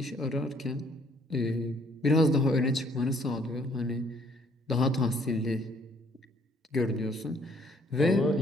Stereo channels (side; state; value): both; normal; correlation 0.63